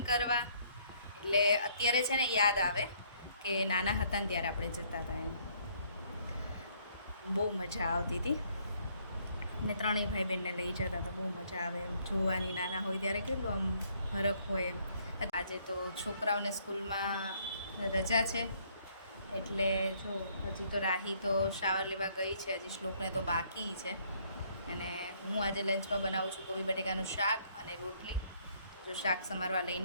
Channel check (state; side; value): inverted; both; correlation -0.66